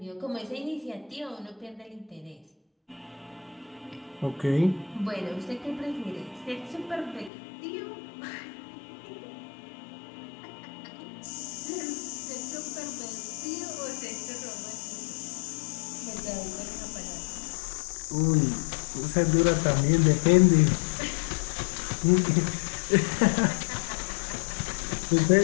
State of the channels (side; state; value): right; drops out; at 7.3 s